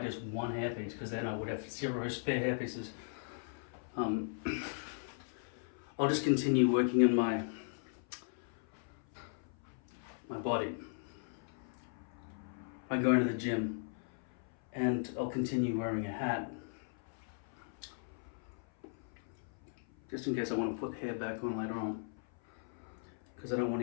just one hairpiece because then I would have 0 spare hairpieces. I'll just continue working on my body. I go into the gym and I'll continue wearing a hat just in case I want to put hair back on later on, because I don't want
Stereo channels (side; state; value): right; silent; 53 dB below the other